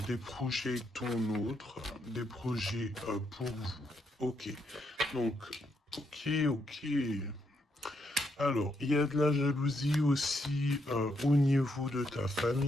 Des projets ton autre, des projets pour vous. Ok. Donc, ok. Alors, il y a de la jalousie aussi au niveau de ta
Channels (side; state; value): both; normal; correlation 0.78